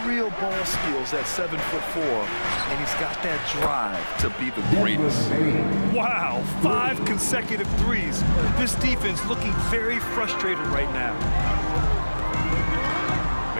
ball skills at 7'4", and he's got that drive to be the greatest. Wow, 5 consecutive threes. This defense looking very frustrated right now.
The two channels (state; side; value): inverted; both; correlation -1.00